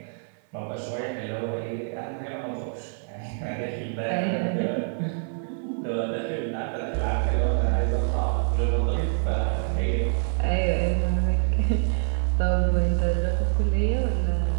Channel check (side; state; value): left; silent; 58 dB below the other